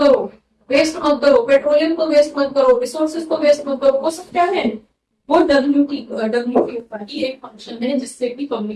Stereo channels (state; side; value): identical; both; correlation 1.00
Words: वेस्ट मत करो, पेट्रोलियम को वेस्ट मत करो, रिसोर्सेज को वेस्ट मत करो, वो सब क्या है, वो WTO का ही एक फंक्शन है जिससे कि